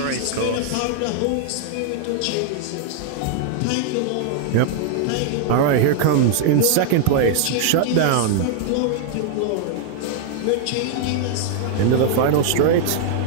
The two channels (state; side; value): different; both; correlation 0.00